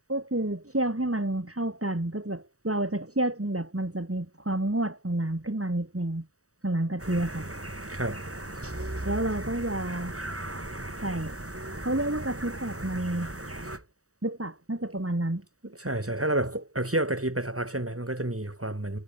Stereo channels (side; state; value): left; late; 0.65 ms